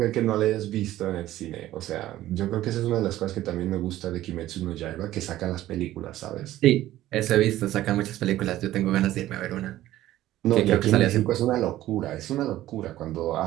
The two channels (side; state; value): left; quieter; 14.5 dB